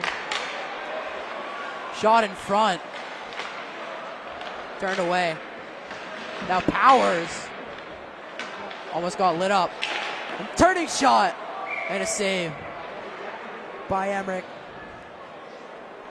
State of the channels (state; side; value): identical; both; correlation 1.00